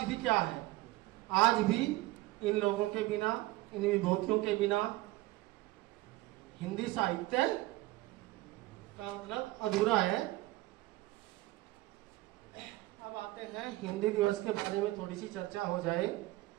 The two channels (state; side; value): quieter; left; 18.5 dB